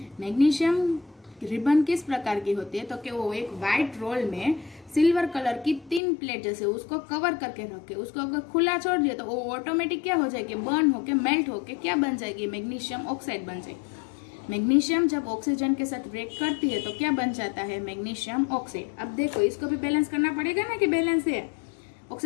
मैग्नीशियम रिबन किस प्रकार की होती है तो कि वो एक वाइट रोल में सिल्वर कलर की 3 प्लेट जैसे उसको कवर करके रखे, उसको अगर खुला छोड़ दिया तो वो ऑटोमेटिक क्या हो जाएगी बर्न होके मेल्ट होके क्या बन जाएगी मैग्नीशियम ऑक्साइड बन जाएगी। मैग्नीशियम जब ऑक्सीजन के साथ रिएक्ट करती है तो क्या बन जाता है मैग्नीशियम ऑक्साइड। अब देखो इसको भी बैलेंस करना पड़ेगा ना कि बैलेंस है।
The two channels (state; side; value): drops out; right; at 6.0 s